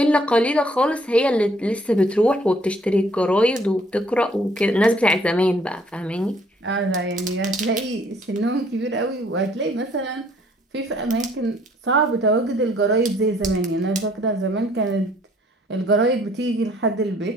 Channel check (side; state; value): both; normal; correlation 0.62